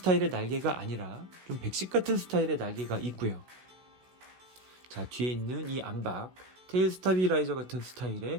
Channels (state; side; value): late; left; 16 ms